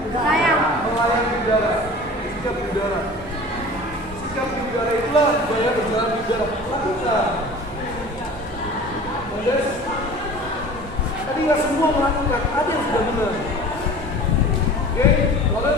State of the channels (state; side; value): normal; both; correlation 0.41